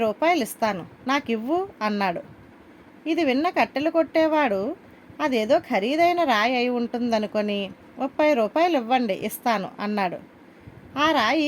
రూపాయలు ఇస్తాను, నాకివ్వు అన్నాడు. ఇది విన్న కట్టెలు కొట్టేవాడు అదేదో ఖరీదైన రాయి అయి ఉంటుందనుకొని, 30 రూపాయలు ఇవ్వండి, ఇస్తాను అన్నాడు. ఆ రాయి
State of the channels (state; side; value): identical; both; correlation 1.00